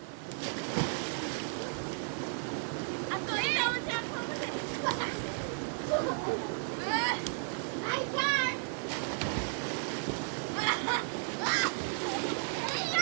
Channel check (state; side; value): silent; left; 55 dB below the other